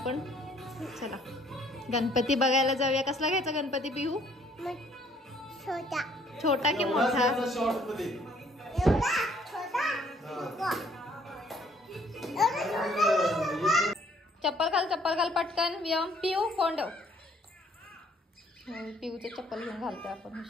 चला गणपती बघायला जाऊया. कसला घ्यायचा गणपती पिहू? छोटा. छोटा की मोठा? चप्पल घाल, चप्पल घाल पटकन. व्यायाम पिऊ फोन ठेव. पिऊचं चप्पल घेऊन घालतोय आपण.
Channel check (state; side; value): normal; both; correlation 0.62